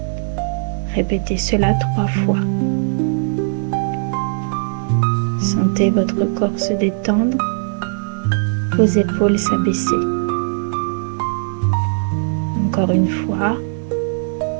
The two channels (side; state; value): left; silent; 67 dB below the other